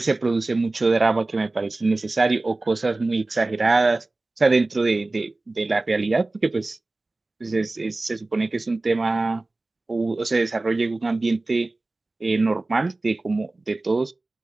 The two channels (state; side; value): quieter; left; 3.1 dB